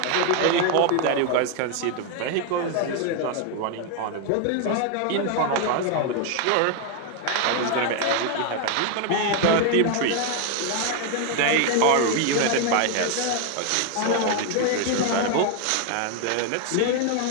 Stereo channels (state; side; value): different; both; correlation 0.01